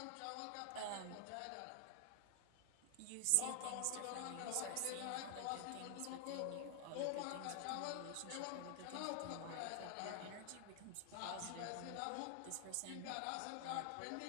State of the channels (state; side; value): different; both; correlation 0.00